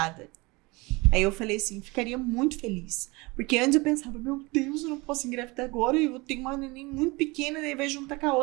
Aí eu falei assim, ficaria muito feliz. Porque antes eu pensava, meu Deus, eu não posso engravidar agora, eu tenho uma neném muito pequena, daí vai juntar com a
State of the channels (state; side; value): quieter; left; 24.7 dB